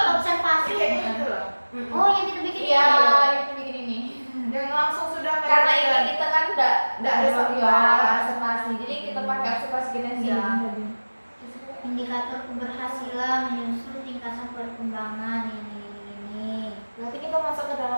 observasi. kayak gitu loh. Oh, yang kita bikin Iya, ini. kita bikin ini. yang langsung sudah Karena ini kita kan enggak ada observasi. Jadi kita pakai observasi kita sih. Iya. Indikator keberhasilan menyusun tingkatan perkembangan ini. berarti kita masuk ke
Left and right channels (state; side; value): inverted; both; correlation -1.00